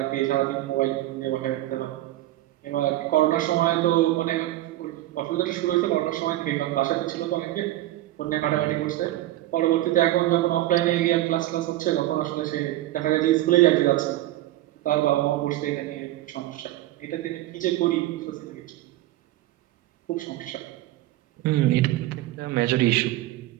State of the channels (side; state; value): left; quieter; 15.4 dB